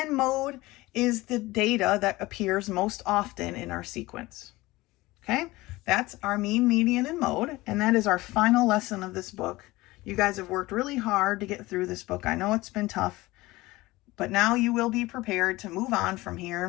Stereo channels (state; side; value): quieter; right; 19.8 dB